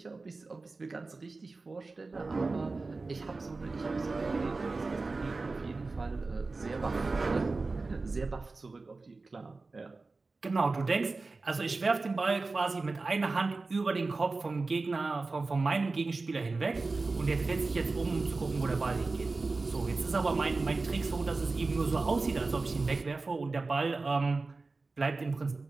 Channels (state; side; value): quieter; left; 3.7 dB